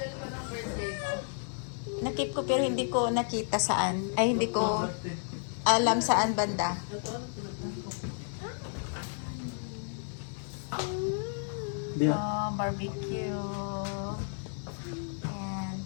Nakip ko pero hindi ko nakita saan. Ay, hindi ko alam saan banda. Oh, barbecue. Ayan.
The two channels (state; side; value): silent; right; 56 dB below the other